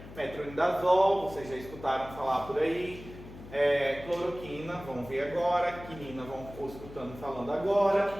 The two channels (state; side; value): noise; left; hum, 16 dB below the sound